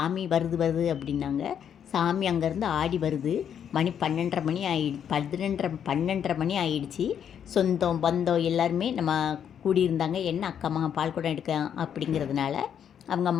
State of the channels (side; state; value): right; quieter; 8.6 dB